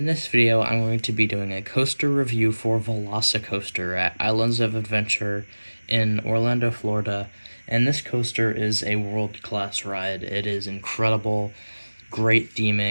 this video I'm going to be doing a coaster review for Velocicoaster at Islands of Adventure in Orlando, Florida. And this coaster is a world-class ride. It is incredible, great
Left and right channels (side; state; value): both; inverted; correlation -1.00